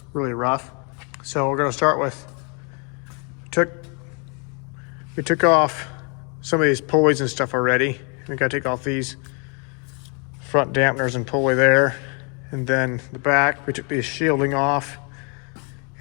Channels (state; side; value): quieter; right; 35.5 dB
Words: really rough. So we're gonna start with, we took off some of these pulleys and stuff already. We gotta take off these front dampeners and pulley there. And then the back, we took the shielding off